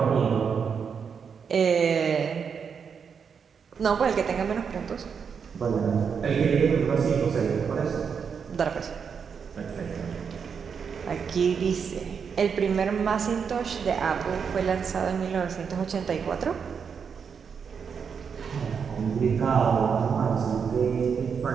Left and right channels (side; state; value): left; quieter; 6.5 dB